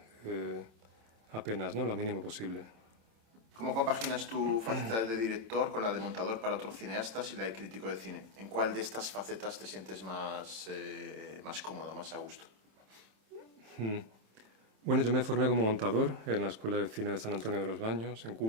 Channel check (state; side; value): late; left; 27 ms